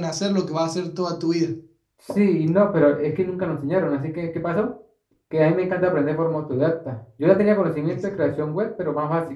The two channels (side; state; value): both; identical; correlation 1.00